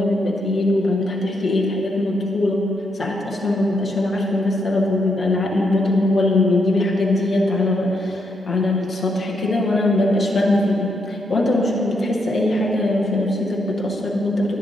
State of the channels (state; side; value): normal; both; correlation 0.78